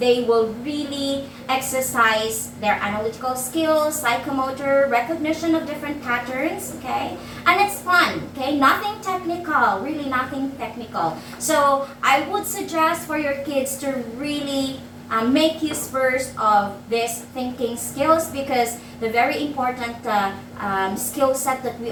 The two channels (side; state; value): both; identical; correlation 1.00